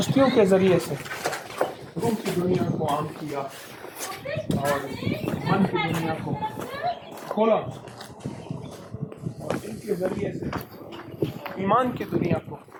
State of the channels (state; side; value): identical; both; correlation 1.00